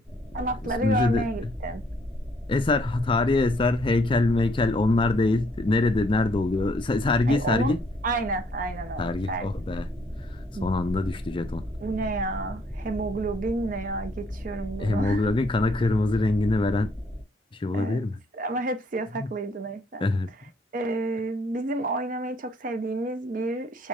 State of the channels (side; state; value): both; normal; correlation 0.66